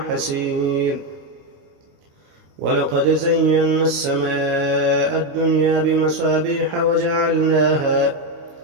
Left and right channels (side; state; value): left; late; 29 ms